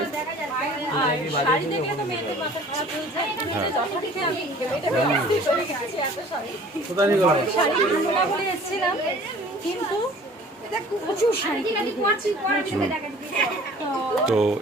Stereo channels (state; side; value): normal; both; correlation 0.49